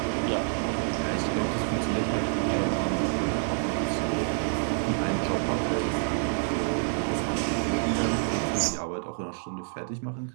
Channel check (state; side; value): silent; left; 59 dB below the other